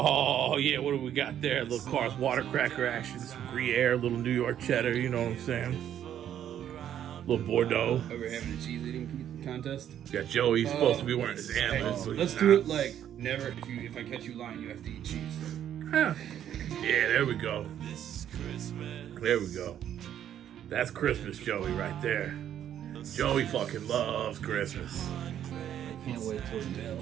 yeah, what do we got there? Little Cars water cracker action, some Gruyere, little New York cheddar. You know what I'm saying? Little Bordeaux. Over having a cheese eating contest. Got Joey supposed to be wearing his antlers. Hey, let's do it like never. If I catch you lying, you have to eat cheese. Huh. Yeah, there we go. There we go. That's Christmas, Joey, right there. Joey fucking loves Christmas. I can't wait till we get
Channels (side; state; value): left; quieter; 10.3 dB